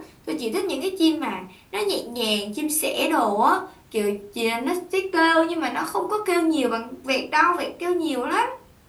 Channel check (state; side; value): identical; both; correlation 1.00